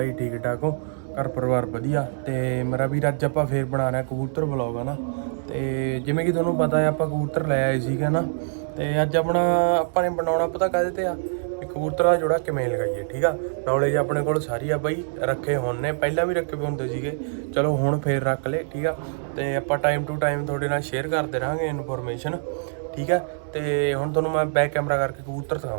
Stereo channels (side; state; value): left; silent; digital silence